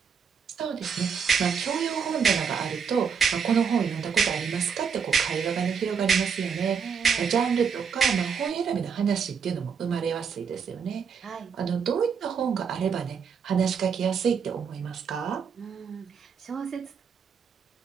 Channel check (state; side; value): quieter; left; 6.6 dB